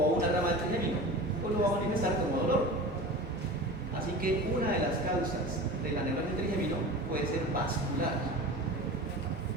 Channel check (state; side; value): normal; both; correlation 0.34